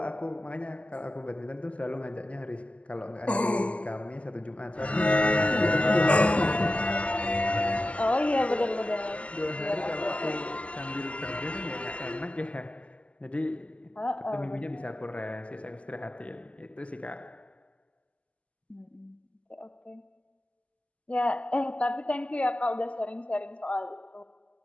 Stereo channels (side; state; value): right; late; 0.063 ms